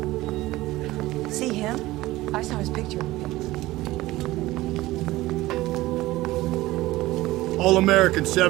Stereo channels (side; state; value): left; quieter; 17.9 dB